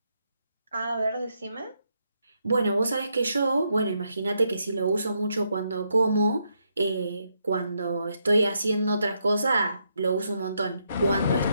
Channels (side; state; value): both; inverted; correlation -0.78